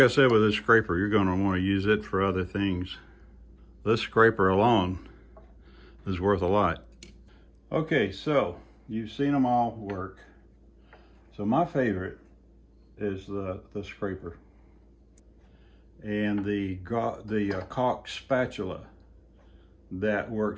said with this scraper, you're going to want to use it for other things. This scraper alone is worth a lot. Okay, so you've seen them all work. So my favorite is the scraper and the caulk spatula. That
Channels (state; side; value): identical; both; correlation 1.00